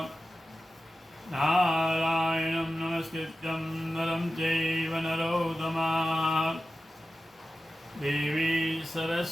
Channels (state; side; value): normal; both; correlation 0.93